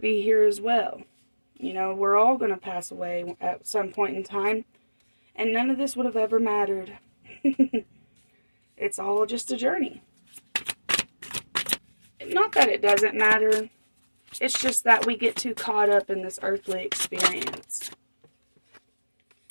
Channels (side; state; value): both; inverted; correlation -1.00